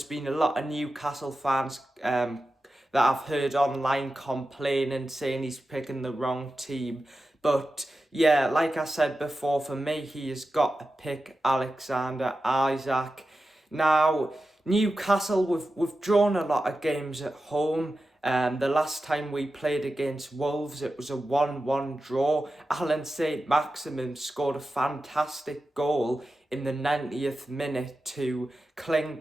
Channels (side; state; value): both; normal; correlation 0.92